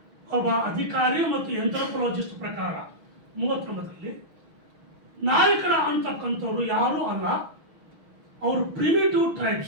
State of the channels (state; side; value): late; left; 6.1 ms